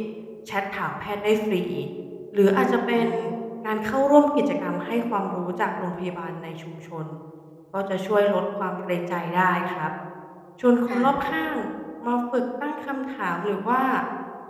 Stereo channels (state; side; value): identical; both; correlation 1.00